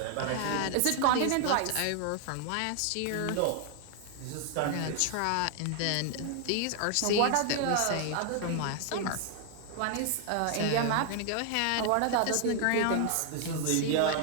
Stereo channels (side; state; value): both; different; correlation 0.00